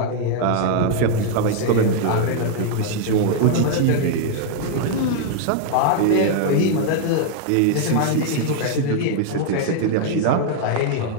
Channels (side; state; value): both; different; correlation 0.00